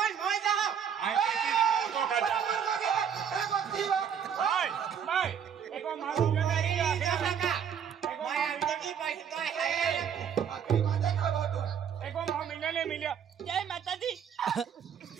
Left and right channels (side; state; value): left; quieter; 8.0 dB